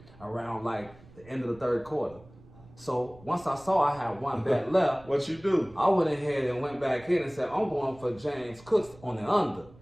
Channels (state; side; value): noise; right; rumble, 23 dB below the sound